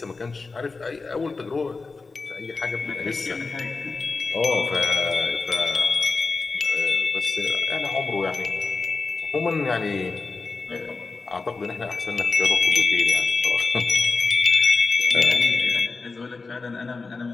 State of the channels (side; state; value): right; quieter; 4.1 dB